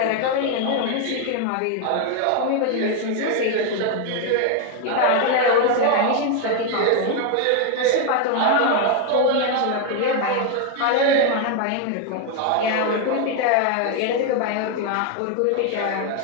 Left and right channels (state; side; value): different; both; correlation 0.01